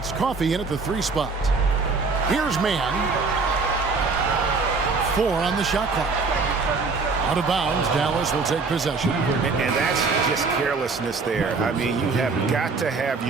Coffey in at the 3 spot. Here's Mann. 4 on the shot clock. Out of bounds, Dallas will take possession. And that's just carelessness there. I mean, you have got to have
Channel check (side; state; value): left; quieter; 4.3 dB